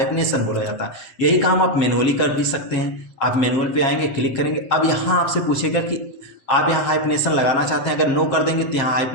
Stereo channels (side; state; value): right; late; 7.5 ms